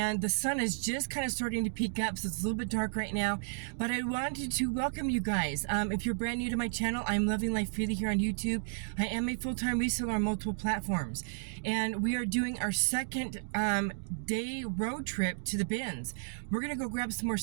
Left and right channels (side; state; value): left; silent; digital silence